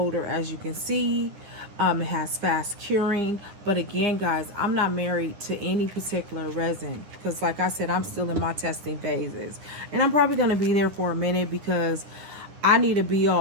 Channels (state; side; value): late; left; 9.8 ms